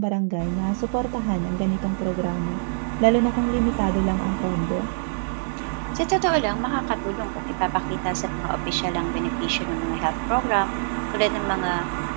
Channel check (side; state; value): left; silent; digital silence